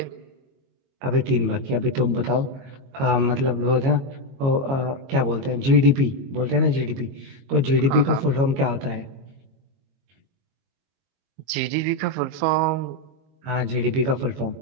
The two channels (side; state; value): left; late; 22 ms